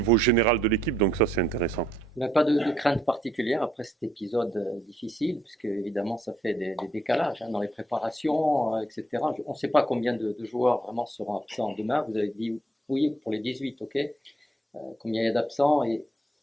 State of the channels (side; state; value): both; normal; correlation 0.72